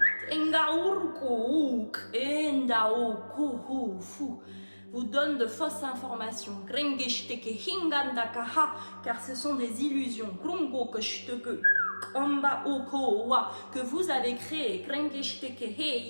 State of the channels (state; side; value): inverted; both; correlation -1.00